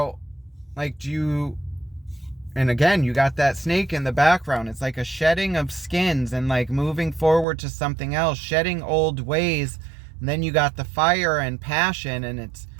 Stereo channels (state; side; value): drops out; left; at 7.5 s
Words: like and again, you got that snake in the background. It's like a shedding of skins and like moving forward to something else, shedding old ways. And then you got the fire and passion, and it's